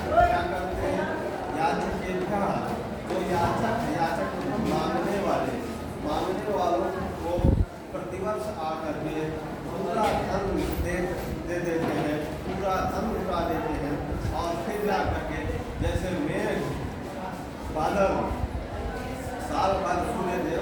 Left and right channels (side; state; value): both; identical; correlation 1.00